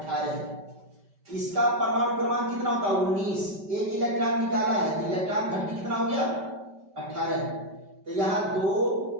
है। इसका परमाणु क्रमांक कितना होता है 19, एक इलेक्ट्रॉन निकाला है तो इलेक्ट्रॉन घनत्व कितना हो गया 18, तो यहां 2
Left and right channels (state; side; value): late; left; 5.1 ms